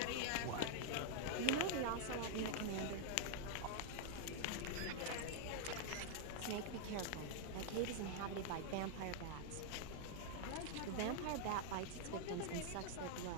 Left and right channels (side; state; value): both; different; correlation 0.00